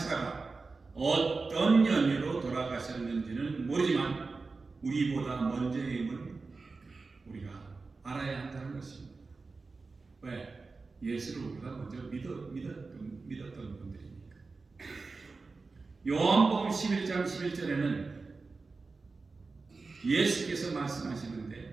어떤 연유로 돌아가셨는지는 모르지만 우리보다 먼저임을 우리가 알아야 한다는 것입니다. 왜? 예수를 우리가 먼저 믿었던 분들이니까. 요한복음 11장 11절에는 예수께서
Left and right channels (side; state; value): left; quieter; 4.0 dB